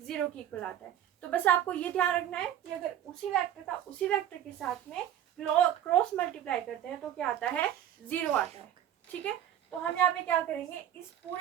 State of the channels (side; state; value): left; quieter; 11.0 dB